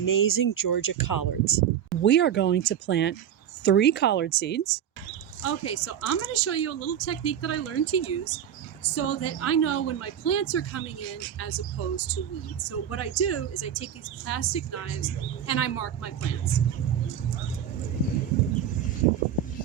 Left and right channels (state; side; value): quieter; left; 9.3 dB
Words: Georgia collards. We are going to plant 3 collard seeds. Okay, so I'm going to show you a little technique that I learned to use so that I know when my plants are coming in as opposed to weeds. So what I do is I take these plastic knives and I mark my plants.